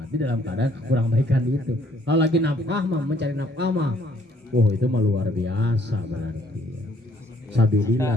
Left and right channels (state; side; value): normal; both; correlation 0.64